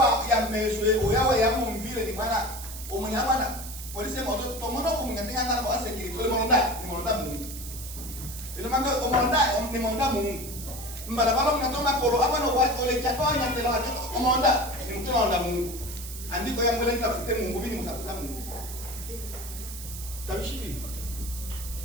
ya meswe oyawa ya mumvile ni bwana umunyabana polisi moto tomono kumungatenga ngana kwa security ole monda Mungu. Ile manga omonda Mungu. Mbala balo mnatoma kolo hapa no watu ole chatonya tela watu omonda ni mtu anaonda Mungu. Andiko yangu ile nitafute Mungu bini mtafuta Mungu. Tabishibi.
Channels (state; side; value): noise; right; hiss, 11 dB below the sound